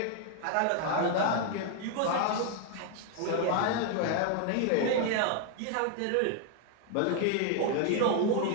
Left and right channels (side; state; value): both; different; correlation 0.00